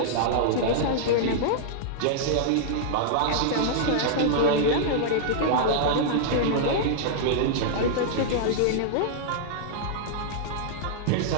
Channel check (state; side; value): different; both; correlation -0.01